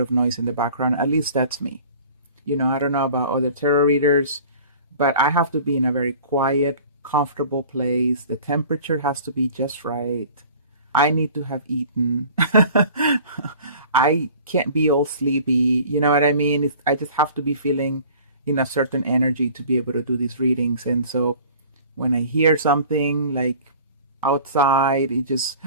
noise in the background. At least that's me. You know, I don't know about other tarot readers, but I have to be in a very quiet, comfortable place. The temperature has to be just right. I need to have eaten. I can't be all sleepy. You know what I mean? I just have to be feeling in a certain energy to be able to do these readings. And so when I hear something like outside, it just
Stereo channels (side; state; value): both; inverted; correlation -0.46